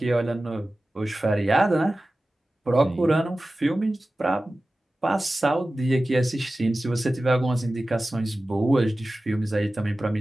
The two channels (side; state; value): both; normal; correlation 0.96